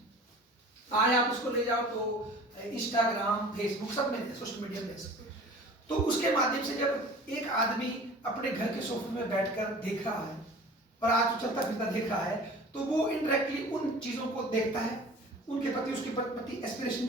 आज आप उसको ले जाओ तो इंस्टाग्राम, फेसबुक सब में सोशल मीडिया में सकते। तो उसके माध्यम से जब एक आदमी अपने घर के सोफे में बैठकर देख रहा है और आज तो चलता फिरता देख रहा है, तो वो इनडायरेक्टली उन चीजों को देखता है, उनके प्रति उसके प्रति एस्पिरेशन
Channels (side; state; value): both; normal; correlation 0.43